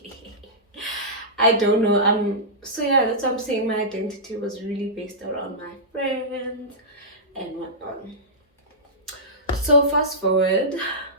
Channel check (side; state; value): both; normal; correlation -0.14